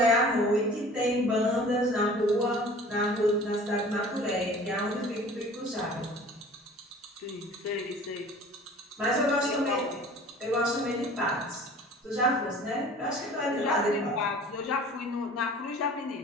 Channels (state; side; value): normal; both; correlation 0.46